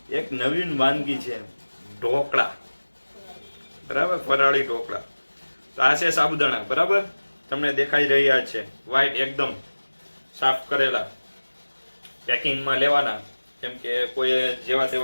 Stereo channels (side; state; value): both; inverted; correlation -1.00